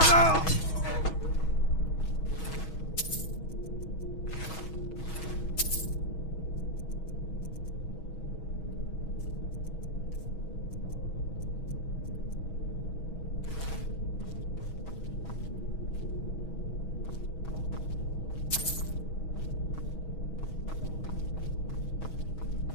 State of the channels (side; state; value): right; late; 6.3 ms